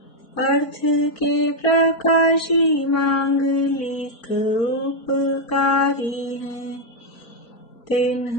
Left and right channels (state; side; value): late; right; 4.4 ms